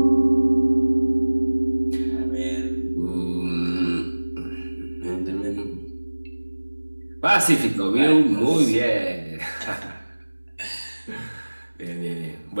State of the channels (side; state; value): both; inverted; correlation -1.00